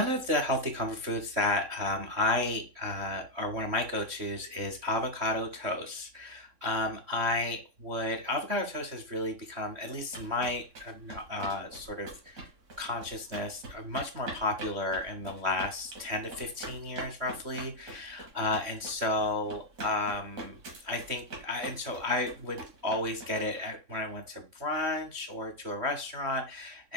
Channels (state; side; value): late; left; 3.6 ms